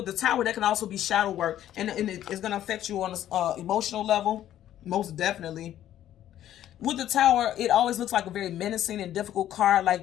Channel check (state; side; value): quieter; right; 11.9 dB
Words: the Tower, that can also be shadow work. And it's going to affect you on an emotional level. Most definitely. With the Tower, it always looks like a very menacing and difficult card.